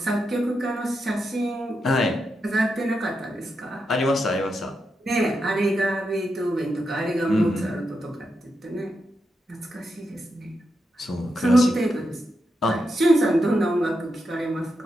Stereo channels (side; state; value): both; normal; correlation 0.86